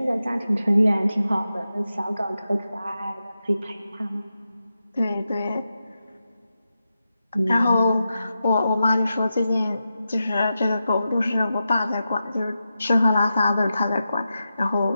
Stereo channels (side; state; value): both; inverted; correlation -0.90